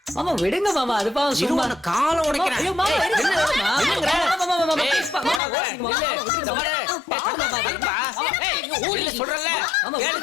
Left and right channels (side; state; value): right; drops out; at 5.4 s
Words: மாமா விடுங்க மாமா, அது பாவம். சும்மா காலம் உடைக்கிறேன். ஐயோ மாமா,